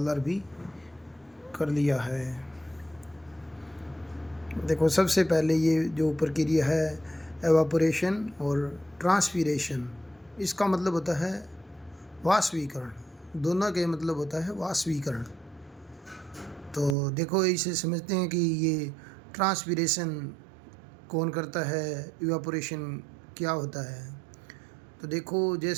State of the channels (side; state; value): left; drops out; at 16.9 s